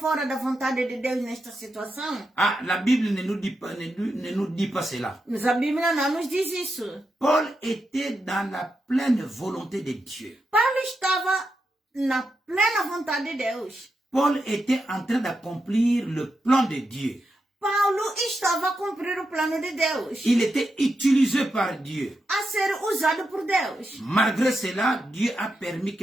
da vontade de Deus nesta situação? Ah, la Bible ne nous dit pas, ne nous dit pas cela. Mas a Bíblia não nos diz isso. Paul était dans la pleine volonté de Dieu. Paulo estava na plena vontade de Deus. Paul était en train d'accomplir le plan de Dieu. Paulo estava a cumprir o plano de Deus, Il était utilisé par Dieu. a ser usado por Deus. Malgré cela, Dieu a permis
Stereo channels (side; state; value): both; normal; correlation 0.87